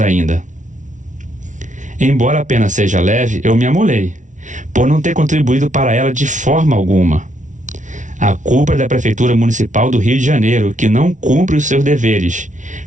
Embora a pena seja leve, eu me amolei, por não ter contribuído para ela de forma alguma. A culpa é da Prefeitura Municipal do Rio de Janeiro, que não cumpre os seus deveres,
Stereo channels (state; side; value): late; left; 0.37 ms